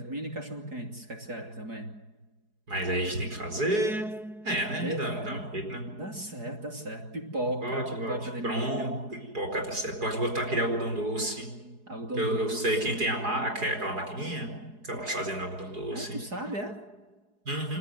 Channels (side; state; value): left; late; 4.8 ms